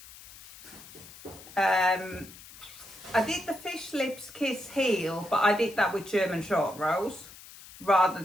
the fish lips kiss heel, but I did that with German short rows rather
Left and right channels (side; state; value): left; noise; hiss, 18 dB below the sound